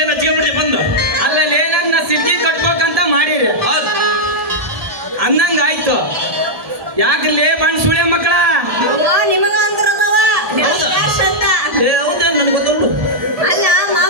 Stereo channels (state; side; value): late; left; 1.7 ms